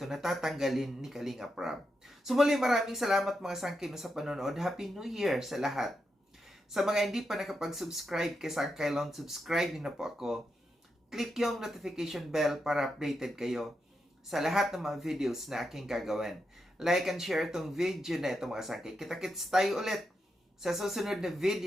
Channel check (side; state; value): both; normal; correlation 0.85